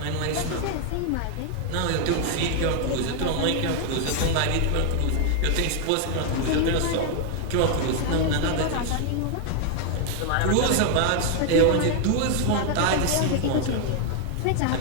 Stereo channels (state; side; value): different; both; correlation 0.00